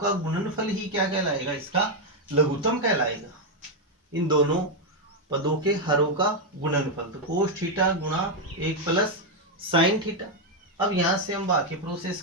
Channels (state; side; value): normal; both; correlation 0.03